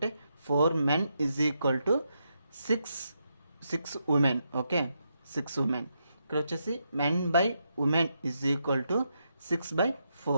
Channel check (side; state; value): both; inverted; correlation -0.82